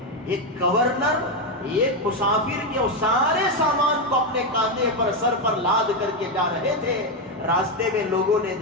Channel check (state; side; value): normal; both; correlation 0.07